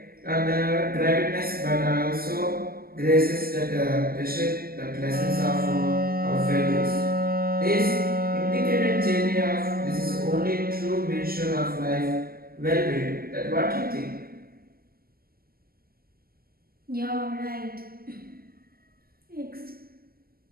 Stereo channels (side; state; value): left; late; 0.43 ms